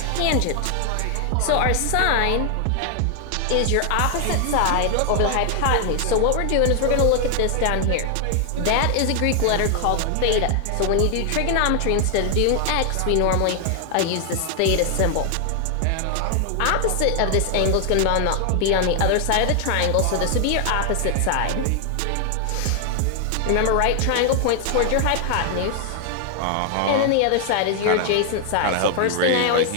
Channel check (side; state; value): both; different; correlation 0.00